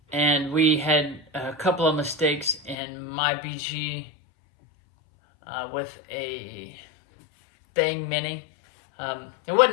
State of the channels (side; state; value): right; drops out; at 2.8 s